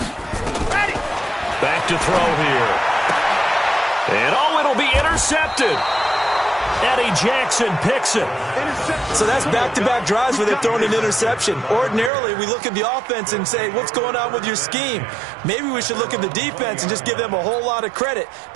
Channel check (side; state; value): left; drops out; at 12.1 s